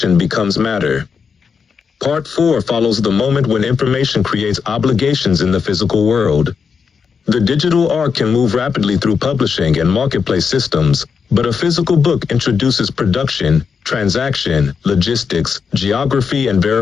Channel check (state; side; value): quieter; right; 6.0 dB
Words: becomes matter. Part 4 follows the moment when information creates obligations in the physical world. The digital arc can move rapidly through publishing and marketplace systems, but a physical book introduces production, transaction, logistics, geography, and